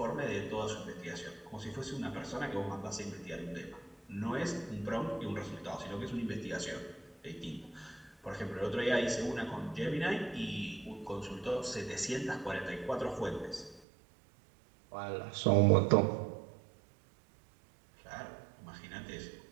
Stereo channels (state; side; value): drops out; left; at 13.8 s